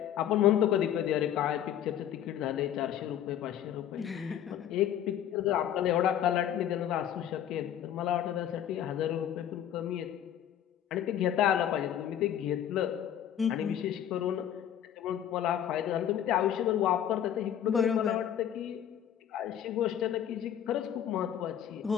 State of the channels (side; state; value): right; quieter; 10.3 dB